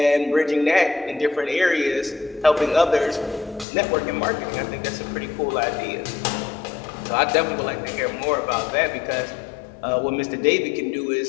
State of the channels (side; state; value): right; drops out; at 3.7 s